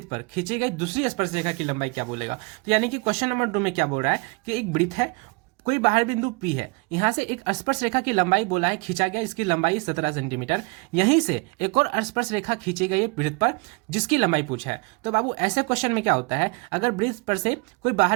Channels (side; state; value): left; quieter; 29.5 dB